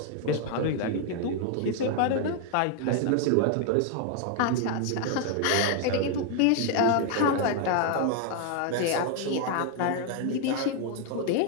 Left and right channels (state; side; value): different; both; correlation 0.00